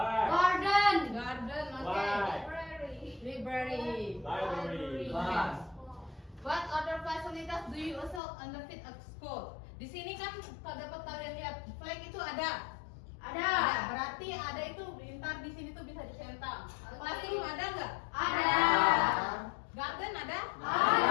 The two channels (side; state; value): right; drops out; at 8.2 s